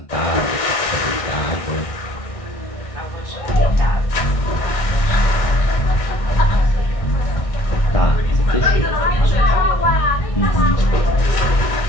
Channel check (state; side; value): late; right; 1.6 ms